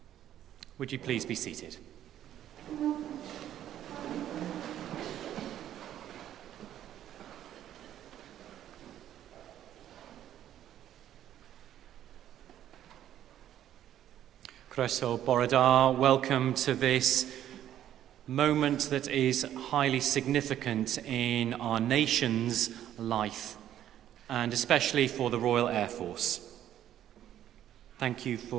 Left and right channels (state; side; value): quieter; left; 11.4 dB